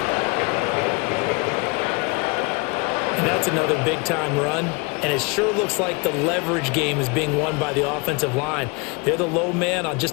And that's another big-time run. And it sure looks like the leverage game is being won by the offensive line. They're the low man on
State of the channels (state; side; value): quieter; right; 28.5 dB